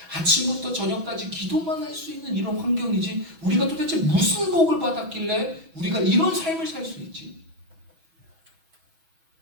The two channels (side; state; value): left; late; 6.1 ms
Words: 아침부터 저녁까지 기도만 할 수 있는 이런 환경이지? 우리가 도대체 무슨 복을 받았길래 우리가 이런 삶을 살 수 있지?